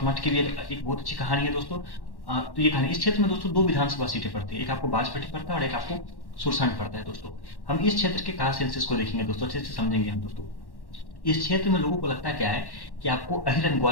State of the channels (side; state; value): right; late; 1.1 ms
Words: मठ की भी एक बहुत अच्छी कहानी है दोस्तों। तो ये कहानी इस क्षेत्र में दोस्तों दो विधानसभा सीटें पड़ती है, एक आपको बाजपट्टी पड़ता है और एक आपको सुरसंड पड़ता है दोस्तों। हम इस क्षेत्र के कास्ट सेंसस को देखेंगे दोस्तों, अच्छे से समझेंगे हम दोस्तों। इस क्षेत्र में लोगों को लगता क्या है कि आपको अहिर एंड